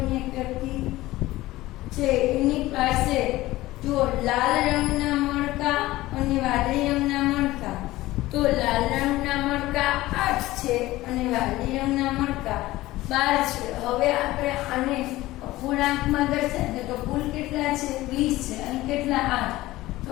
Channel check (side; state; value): right; quieter; 17.5 dB